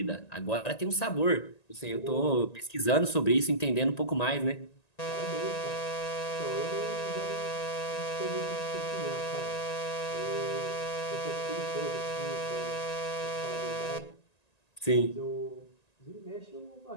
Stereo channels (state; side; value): late; right; 1.9 ms